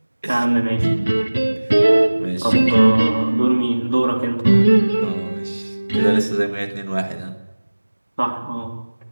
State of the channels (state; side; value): inverted; both; correlation -1.00